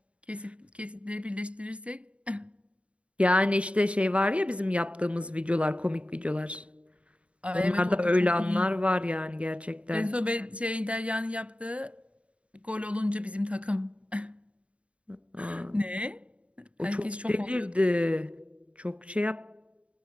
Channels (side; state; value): left; late; 0.062 ms